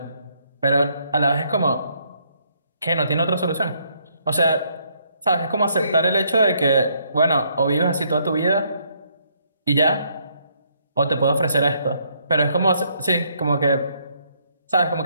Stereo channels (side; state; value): both; inverted; correlation -0.71